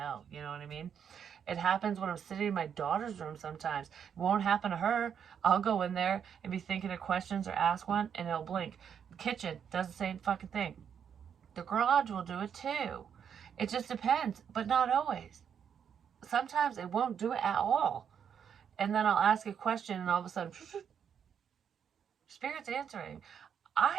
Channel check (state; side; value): quieter; left; 7.9 dB